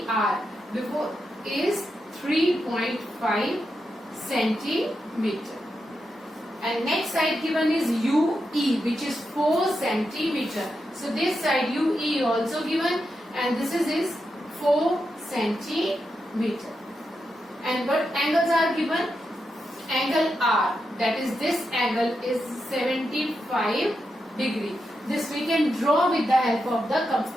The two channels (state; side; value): normal; both; correlation 0.86